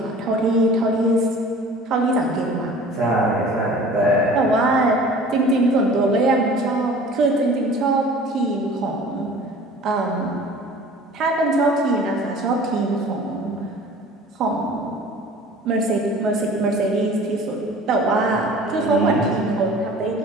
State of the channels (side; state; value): both; normal; correlation 0.45